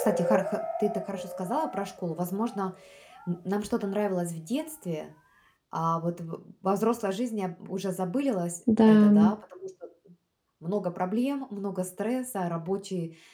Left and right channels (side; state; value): both; identical; correlation 1.00